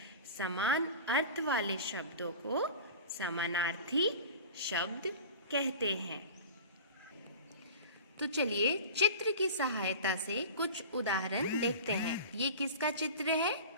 समान अर्थ वाले शब्दों को समानार्थी शब्द कहते हैं। तो चलिए चित्र की सहायता से कुछ उदाहरण देखते हैं। ये किसका चित्र है?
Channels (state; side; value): inverted; both; correlation -0.36